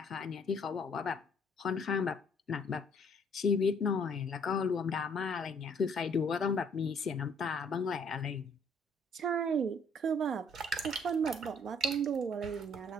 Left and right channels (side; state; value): both; normal; correlation 0.62